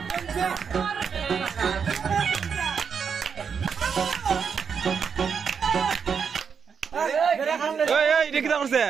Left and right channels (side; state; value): left; quieter; 6.5 dB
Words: Ey, ¿de qué estamos